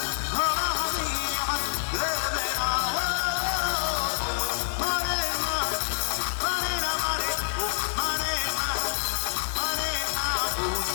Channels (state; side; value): silent; right; 60 dB below the other